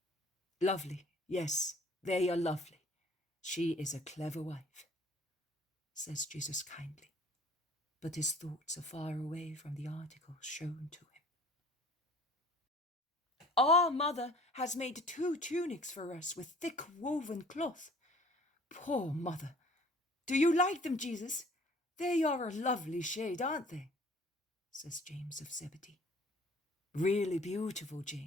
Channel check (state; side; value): normal; both; correlation 0.51